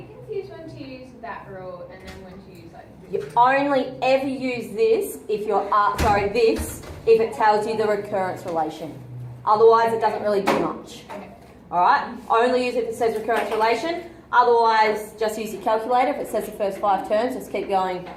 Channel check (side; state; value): both; identical; correlation 1.00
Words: confused when to use that rule and then when to use like You only ever use this if you're, this, if it tells you the recurrence relation. Otherwise, it doesn't really do much. Okay. Alright? Only use it if it says recurrence relation. Otherwise, just use your calculator. If it says the first 5 terms, just keep going